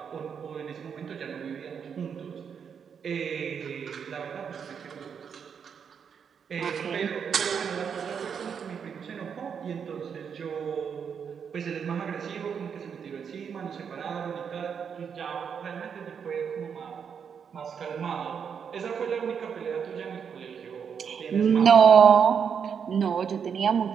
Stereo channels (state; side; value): quieter; left; 7.0 dB